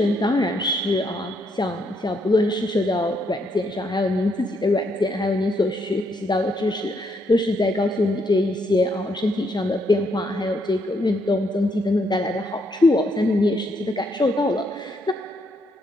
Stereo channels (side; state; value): both; normal; correlation 0.75